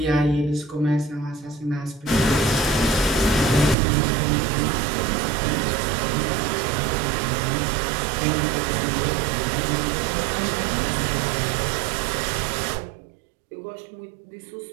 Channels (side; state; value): left; drops out; at 3.8 s